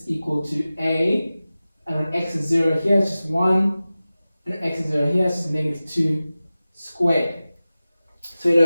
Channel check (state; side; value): inverted; both; correlation -0.96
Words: equal to a, and when x is 0 here, it's just 1, and x is 0 here, it's just -2 squared. So you